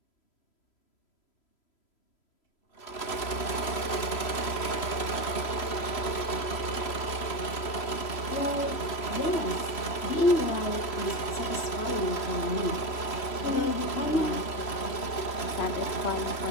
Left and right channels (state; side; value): late; right; 3.0 ms